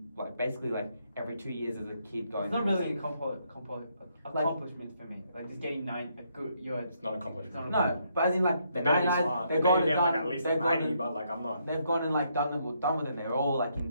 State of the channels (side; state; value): both; inverted; correlation -0.74